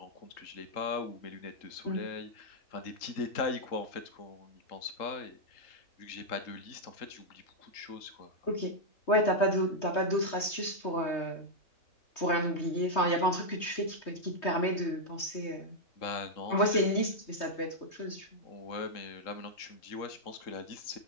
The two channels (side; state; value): right; late; 3.2 ms